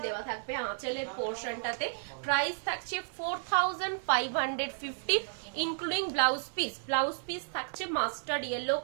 দেওয়া থাকবে আঁচলের পোর্শনটাতে। প্রাইস থাকছে 4550 including blouse piece. Blouse piece থাকছে মাস্টার্ड येलो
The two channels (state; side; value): silent; left; 56 dB below the other